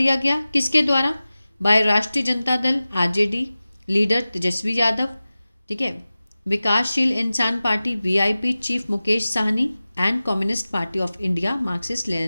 गया किसके द्वारा, बाय राष्ट्रीय जनता दल RJD लीडर तेजस्वी यादव, ठीक है, विकासशील इंसान party VIP chief Mukesh Sahni, and communist party of India Marxist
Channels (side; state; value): both; inverted; correlation -0.96